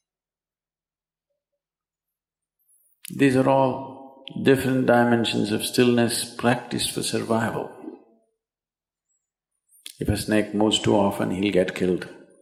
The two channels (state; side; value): identical; both; correlation 1.00